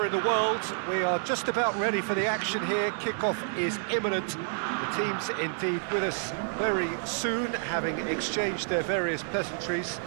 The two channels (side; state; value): left; silent; 59 dB below the other